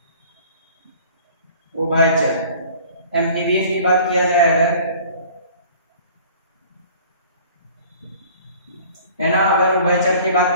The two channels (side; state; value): both; inverted; correlation -0.49